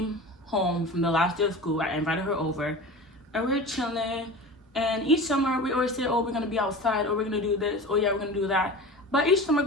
home from the last day of school. I invited her over and we were chilling, and each summer we always say, oh, we're gonna be outside, or we're gonna do this, oh yeah, we're gonna do that. But each summer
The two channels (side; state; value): both; normal; correlation 0.33